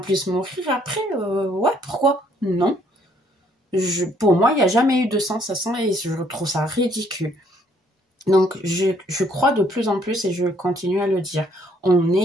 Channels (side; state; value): both; normal; correlation 0.66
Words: mourir après. Ouais, pourquoi? Non. Pour moi, il n'y a jamais eu de sens à ça et je trouve ça ridicule. Donc, je crois de plus en plus et je continue à le dire. On